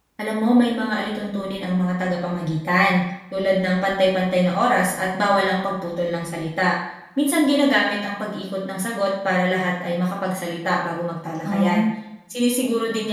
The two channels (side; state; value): both; identical; correlation 1.00